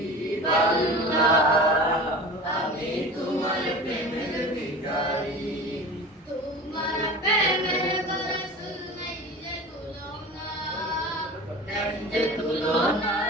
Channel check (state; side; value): normal; both; correlation 0.36